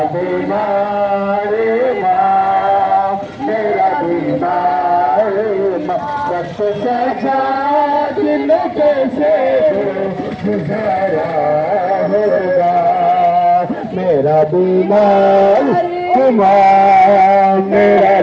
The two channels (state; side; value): identical; both; correlation 1.00